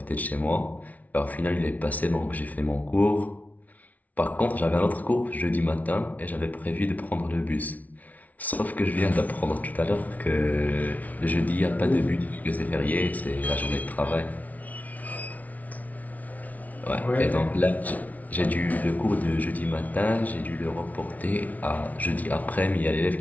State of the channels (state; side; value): late; right; 0.073 ms